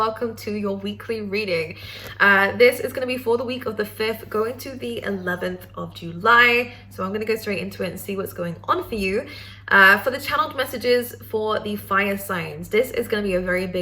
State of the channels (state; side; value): identical; both; correlation 1.00